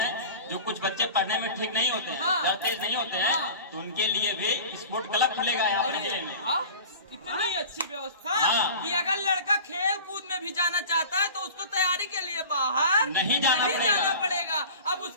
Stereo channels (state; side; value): inverted; both; correlation -0.38